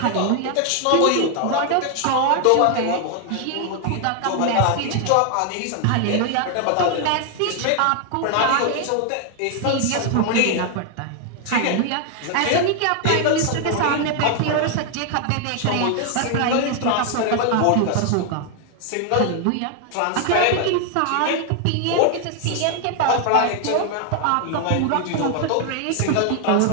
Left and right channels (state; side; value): different; both; correlation 0.00